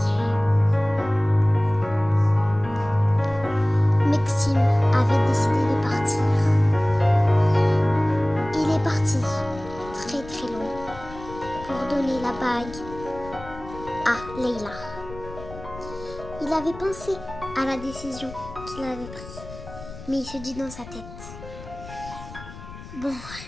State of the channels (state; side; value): noise; left; rumble, 15 dB below the sound